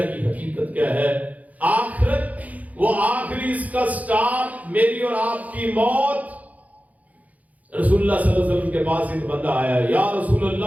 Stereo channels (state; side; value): late; left; 0.074 ms